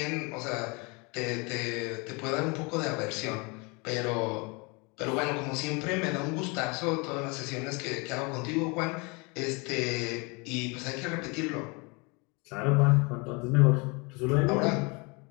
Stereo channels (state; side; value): quieter; right; 29.4 dB